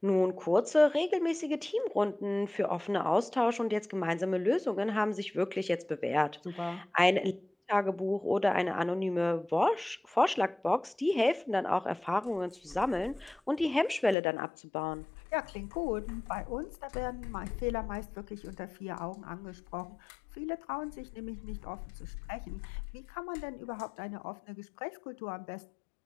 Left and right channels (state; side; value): drops out; right; at 14.2 s